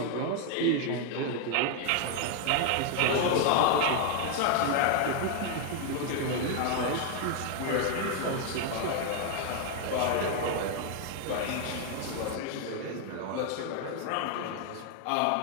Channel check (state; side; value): different; both; correlation 0.00